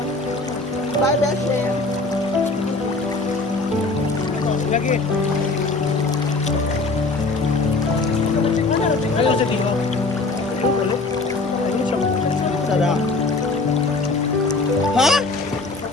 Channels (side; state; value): right; quieter; 3.5 dB